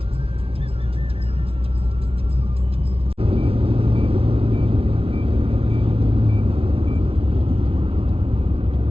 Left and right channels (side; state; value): left; late; 0.27 ms